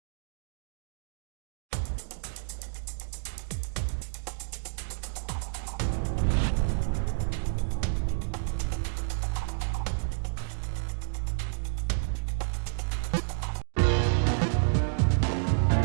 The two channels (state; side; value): silent; left; digital silence